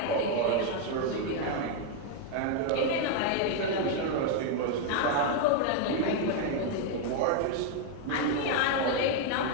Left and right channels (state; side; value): different; both; correlation 0.01